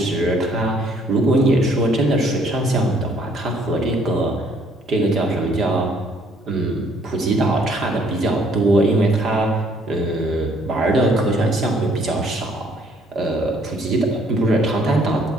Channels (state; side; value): normal; both; correlation 0.63